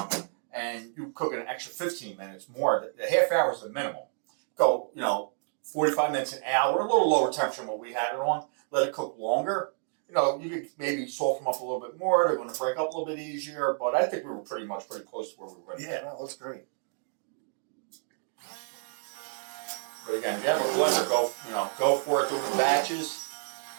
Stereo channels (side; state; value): left; silent; digital silence